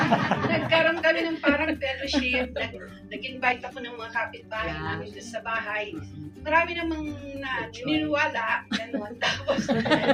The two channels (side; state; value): both; identical; correlation 1.00